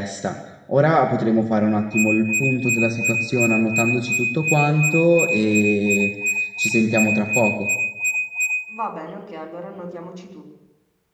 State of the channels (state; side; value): identical; both; correlation 1.00